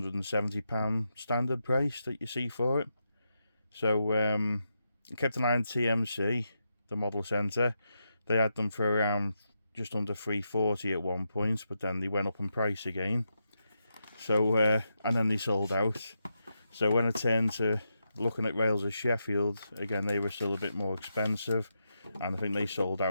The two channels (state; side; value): inverted; both; correlation -0.85